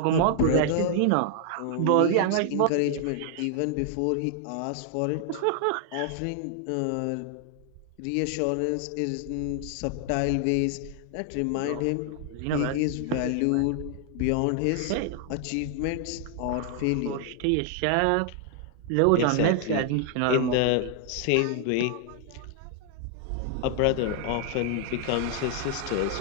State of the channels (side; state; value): both; different; correlation 0.00